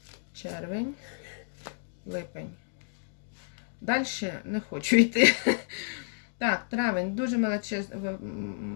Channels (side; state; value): right; silent; digital silence